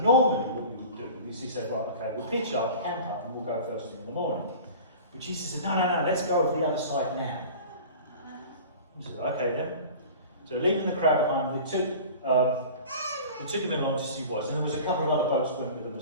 what we would do is he said, well, okay, we'll pitch up, camp up, and we'll go first thing in the morning. But Jesus said, no, let's go over the other side now. He said, okay then. So leaving the crowd behind, they took him along to see what it was, and there was a couple of other boats that went with them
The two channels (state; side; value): inverted; both; correlation -0.39